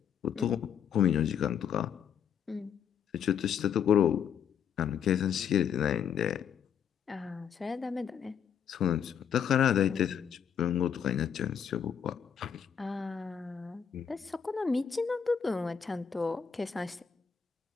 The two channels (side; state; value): right; quieter; 7.9 dB